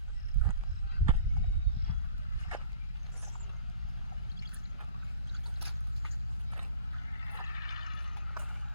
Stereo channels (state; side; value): inverted; both; correlation -0.48